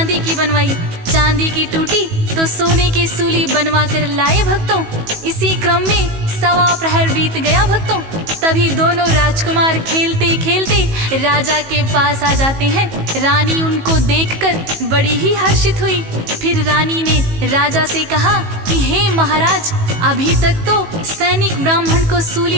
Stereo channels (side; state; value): left; late; 18 ms